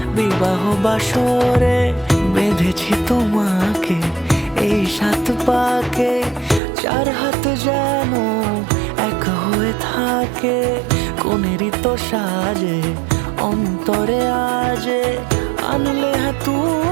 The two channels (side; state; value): left; drops out; at 6.6 s